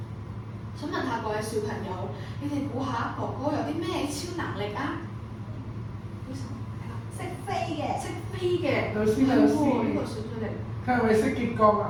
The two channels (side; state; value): both; identical; correlation 1.00